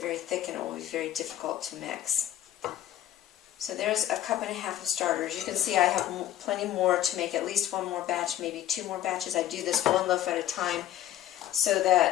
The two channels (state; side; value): quieter; right; 12.7 dB